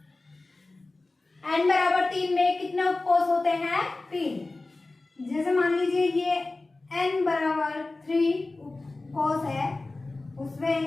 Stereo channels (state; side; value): quieter; right; 3.2 dB